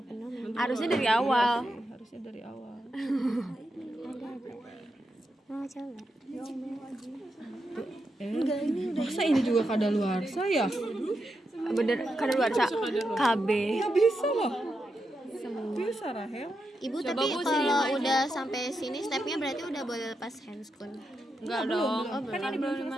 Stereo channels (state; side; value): normal; both; correlation 0.86